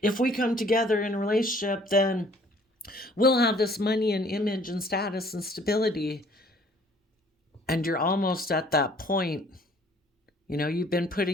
if we come together in a relationship, then we'll have this money and image and status and stability. And you're almost at that point. You've been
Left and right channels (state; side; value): normal; both; correlation 0.57